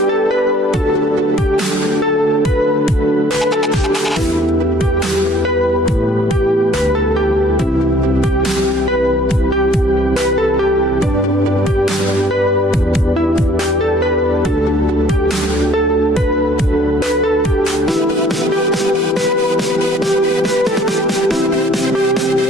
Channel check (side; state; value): both; normal; correlation 0.57